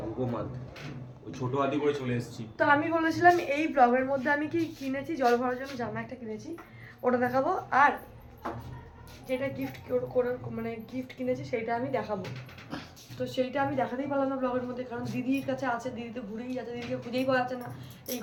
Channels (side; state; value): both; identical; correlation 1.00